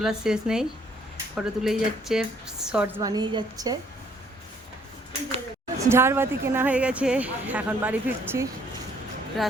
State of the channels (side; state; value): both; normal; correlation 0.64